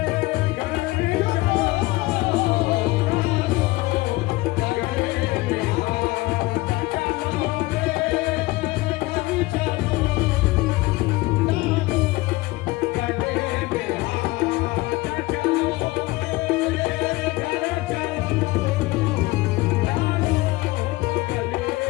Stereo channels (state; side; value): quieter; right; 20.6 dB